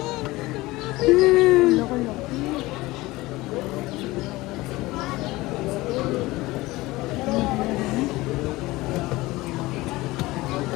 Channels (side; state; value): right; quieter; 19.9 dB